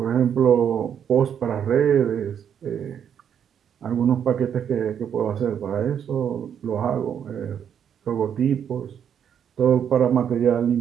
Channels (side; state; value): left; quieter; 8.5 dB